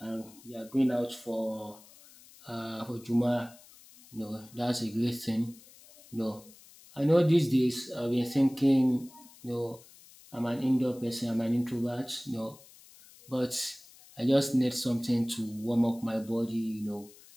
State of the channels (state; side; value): noise; left; hiss, 23 dB below the sound